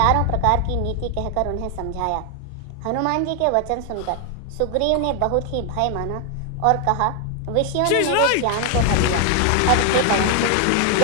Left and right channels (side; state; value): both; different; correlation 0.00